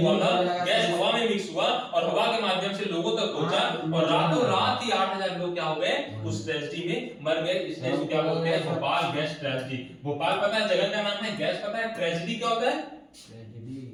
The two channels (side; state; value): both; identical; correlation 1.00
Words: हुआ था, गैस हवा में मिक्स हुआ और हवा के माध्यम से लोगों तक पहुंचा, और रातों रात ही 8000 लोग क्या हो गए, उस ट्रेजडी में मर गए। इसलिए इसको क्या बोलते हैं, भोपाल गैस ट्रेजडी। भोपाल पता है जगह का नाम है, गैस पता है, ट्रेजडी क्या होता है,